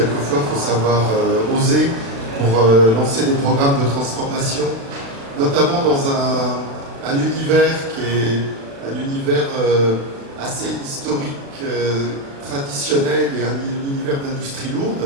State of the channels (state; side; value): late; left; 36 ms